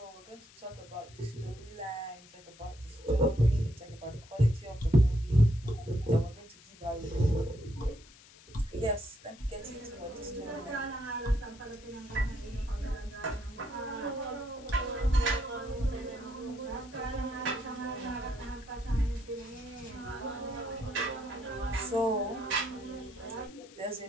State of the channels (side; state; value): left; noise; hiss, 22 dB below the sound